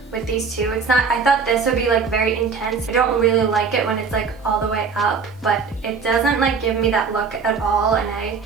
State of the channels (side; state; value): left; quieter; 5.4 dB